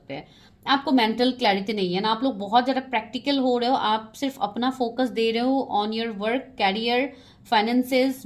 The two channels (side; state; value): both; identical; correlation 1.00